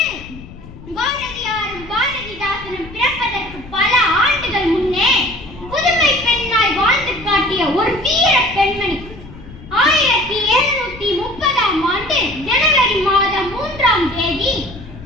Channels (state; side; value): noise; left; rumble, 17 dB below the sound